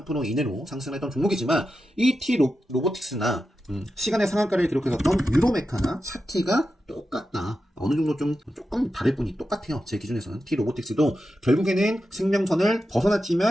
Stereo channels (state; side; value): normal; both; correlation 0.90